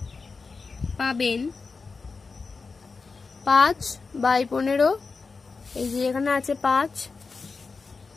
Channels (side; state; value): right; quieter; 4.5 dB